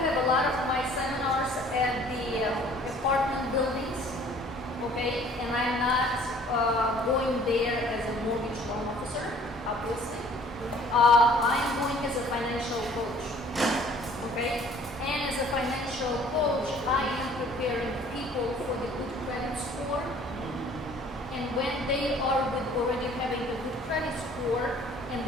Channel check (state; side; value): normal; both; correlation 0.54